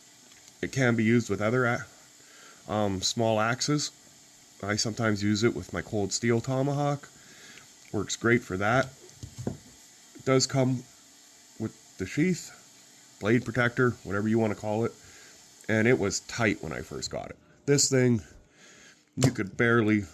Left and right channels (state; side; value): identical; both; correlation 1.00